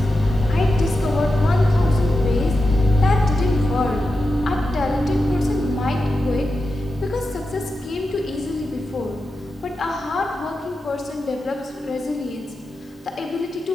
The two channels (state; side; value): normal; both; correlation 0.90